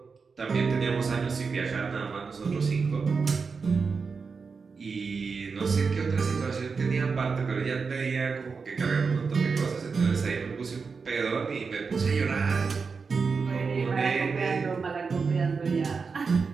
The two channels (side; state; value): left; quieter; 5.1 dB